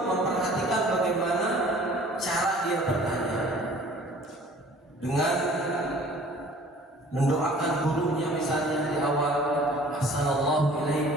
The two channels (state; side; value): normal; both; correlation 0.50